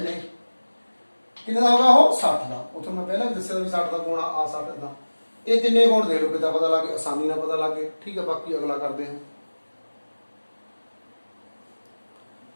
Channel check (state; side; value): inverted; both; correlation -1.00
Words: ਕਿੰਨੇ ਦਾ ਹੋਗਾ ਉਹ 60 ਦਾ ਉਥੋਂ ਮੈਂ ਪਹਿਲਾਂ ਵੀ ਦੱਸਿਆ ਵੀ 60 ਦਾ ਕੋਣ ਆ 60 ਦਾ ਇਹ ਤਿੰਨੇ ਕੋਣ ਦੇ ਲਓ ਕਿਦਾਂ ਪਤਾ ਲੱਗੇ ਆਸਾਨੀ ਨਾਲ ਪਤਾ ਲੱਗੇ ਠੀਕ ਹੈ ਬਾਕੀ ਅਗਲਾ ਕਰਦੇ ਹਾਂ